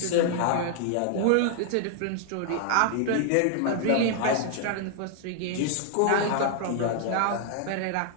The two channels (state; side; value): different; both; correlation 0.00